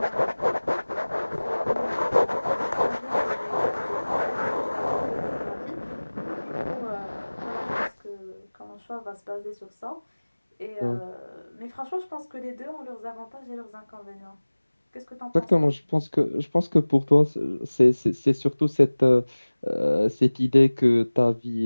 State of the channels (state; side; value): inverted; both; correlation -1.00